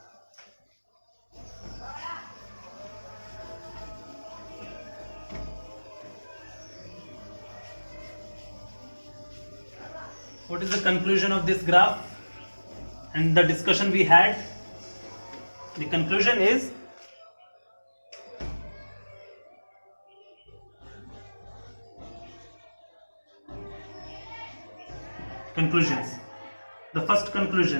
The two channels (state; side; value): inverted; both; correlation -1.00